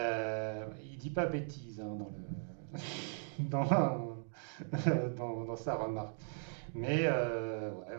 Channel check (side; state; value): left; silent; digital silence